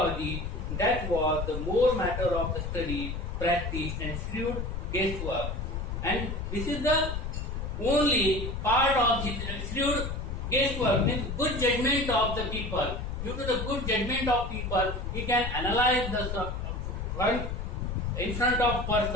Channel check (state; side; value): noise; left; rumble, 4 dB below the sound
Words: That was the more matter of the study, practice and shrewd guesswork. And this is the only part of his shrewd guesswork, means good judgment of the people. Due to the good judgment of people, he can analyze the one in front of